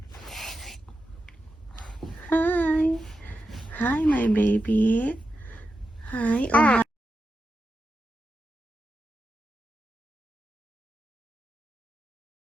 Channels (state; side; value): normal; both; correlation 0.89